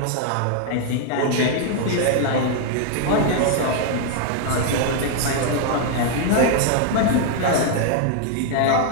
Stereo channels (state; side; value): different; both; correlation 0.00